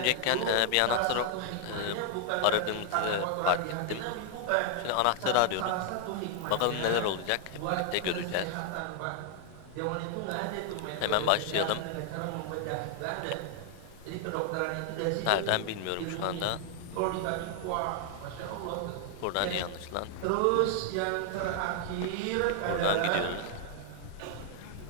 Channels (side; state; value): both; different; correlation 0.00